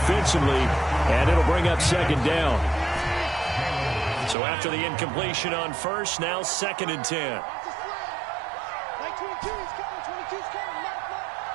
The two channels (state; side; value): drops out; left; at 4.4 s